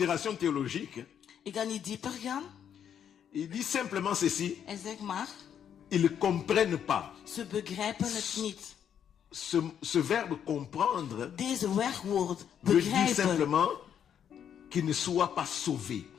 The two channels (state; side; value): quieter; right; 8.8 dB